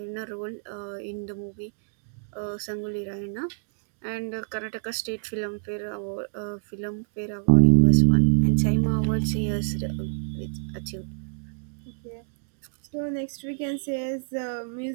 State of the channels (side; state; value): left; silent; digital silence